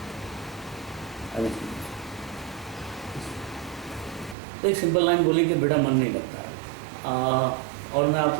तो एक सिंपल लाइन बोली कि बेटा मन नहीं लगता। और मैं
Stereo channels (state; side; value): drops out; left; at 4.4 s